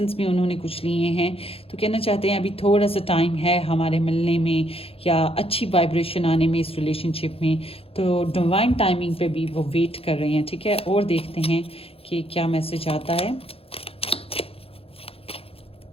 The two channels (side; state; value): right; late; 0.27 ms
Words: بھی انہوں نے کچھ لیے ہیں، تو کہنا چاہتے ہیں ابھی تھوڑا سا ٹائم ہے ہمارے ملنے میں یا اچھی وائبریشن آنے میں اس ریلیشن شپ میں. تو ڈیوائن ٹائمنگ پہ بھی وہ ویٹ کر رہے ہیں. ٹھیک ہے، اور دیکھتے ہیں کہ کیا میسج آتا ہے.